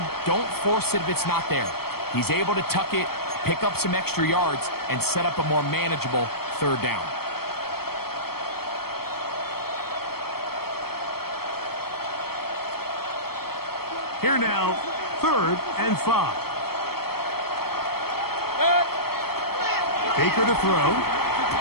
don't force it if it's not there. He's able to tuck it, pick up some extra yards, and set up a more manageable third down. Here now, 3rd and 5. Baker to throw.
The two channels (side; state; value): right; late; 0.95 ms